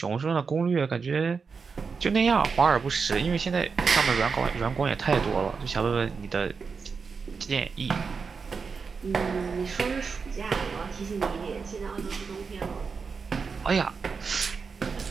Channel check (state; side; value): quieter; left; 5.2 dB